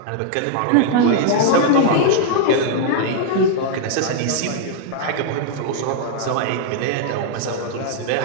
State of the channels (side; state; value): both; different; correlation -0.01